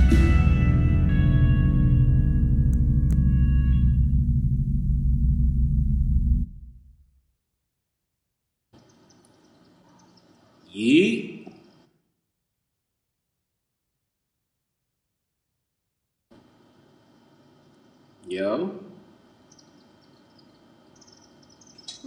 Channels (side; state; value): both; identical; correlation 1.00